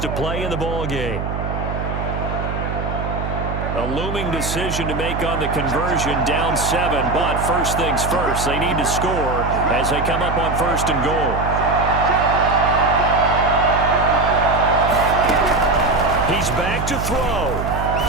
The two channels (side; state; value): right; noise; hum, 4 dB below the sound